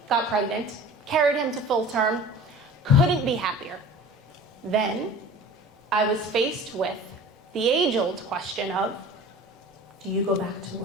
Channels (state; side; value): normal; both; correlation 0.41